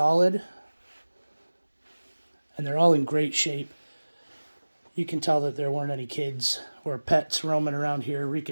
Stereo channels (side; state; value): both; inverted; correlation -1.00